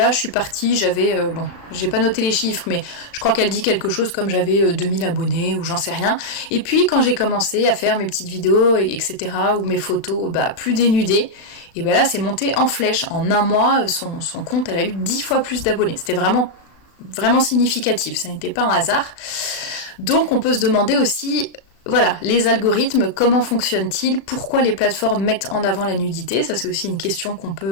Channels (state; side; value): late; right; 36 ms